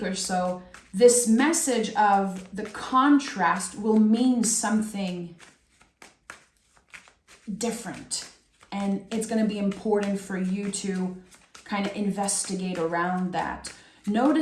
or so, this message of the contrast will mean something different. And it's going to be important for you to kind of investigate around that.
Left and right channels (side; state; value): both; identical; correlation 1.00